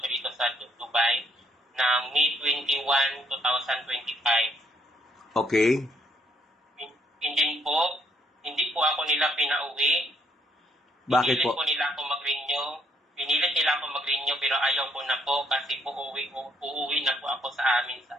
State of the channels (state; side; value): normal; both; correlation 0.70